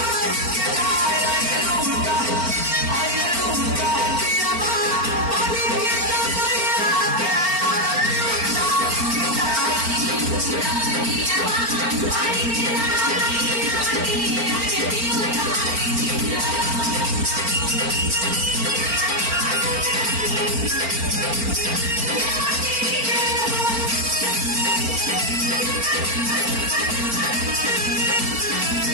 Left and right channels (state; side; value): late; left; 4.4 ms